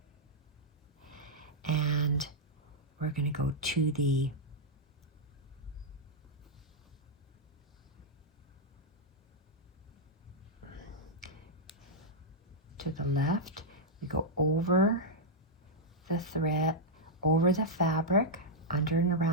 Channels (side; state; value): both; normal; correlation -0.05